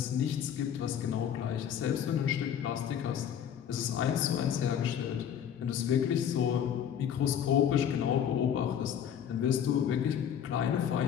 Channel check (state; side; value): quieter; right; 9.0 dB